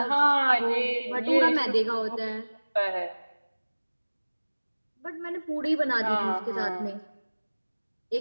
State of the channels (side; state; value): both; inverted; correlation -1.00